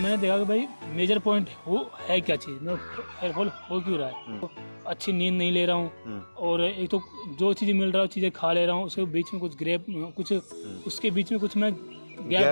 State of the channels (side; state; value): both; inverted; correlation -1.00